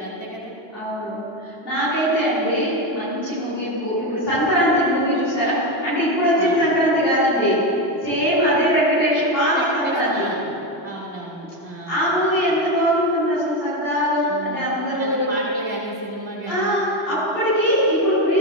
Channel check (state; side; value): late; right; 2.1 ms